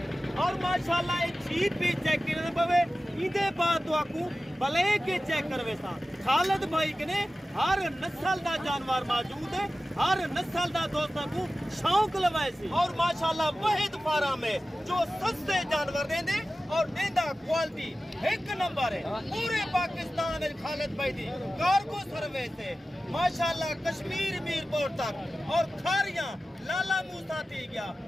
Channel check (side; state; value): both; normal; correlation 0.95